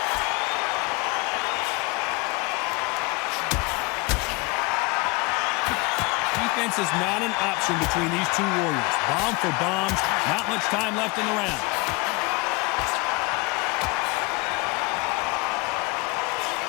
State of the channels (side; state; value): right; quieter; 26.1 dB